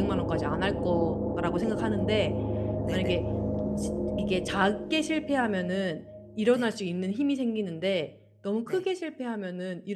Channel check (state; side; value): identical; both; correlation 1.00